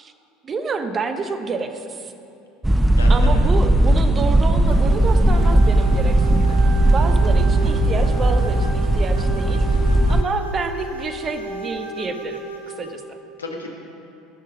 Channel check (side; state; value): both; normal; correlation 0.86